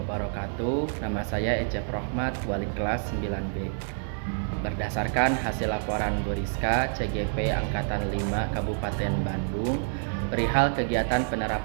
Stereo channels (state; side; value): silent; left; digital silence